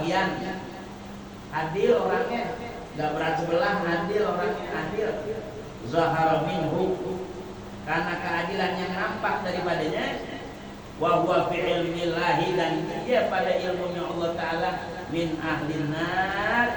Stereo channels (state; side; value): identical; both; correlation 1.00